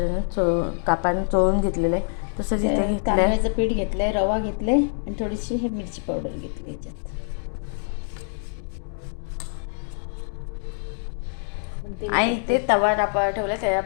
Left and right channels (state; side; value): silent; right; digital silence